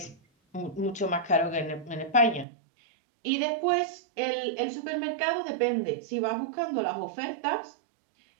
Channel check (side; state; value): left; drops out; at 2.5 s